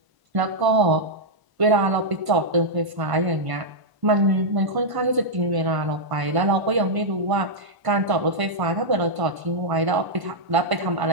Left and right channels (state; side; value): late; left; 1.0 ms